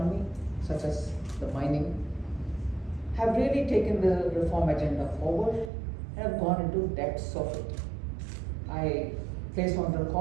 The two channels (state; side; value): drops out; left; at 5.7 s